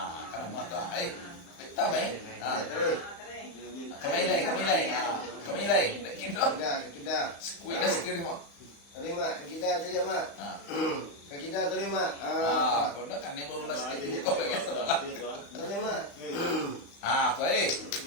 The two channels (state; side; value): late; right; 35 ms